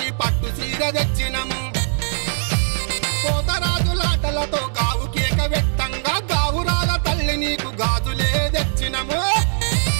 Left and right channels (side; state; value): left; silent; digital silence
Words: పట్టు సీర తెచ్చినము కోతరాజులాటలతో గావు కేక వెట్టంగా గావురాల తల్లి నీకు గాజులే తెచ్చినము